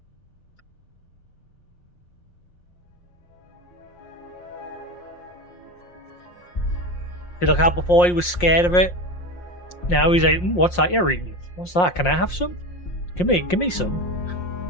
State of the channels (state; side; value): late; right; 5.6 ms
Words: See, look how before he was scared of it. Now he's like, what's that you're eating? What's that? Can I have some? Give me some.